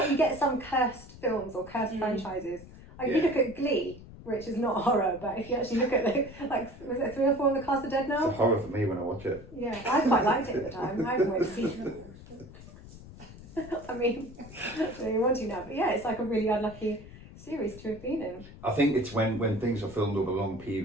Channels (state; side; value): noise; left; rumble, 17 dB below the sound